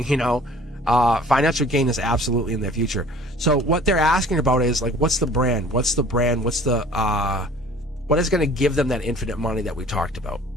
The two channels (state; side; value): normal; both; correlation 0.50